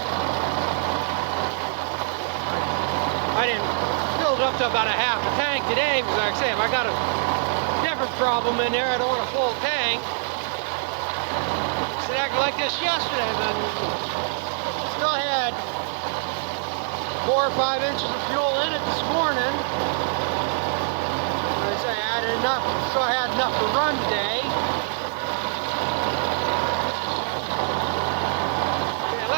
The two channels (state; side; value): silent; left; 62 dB below the other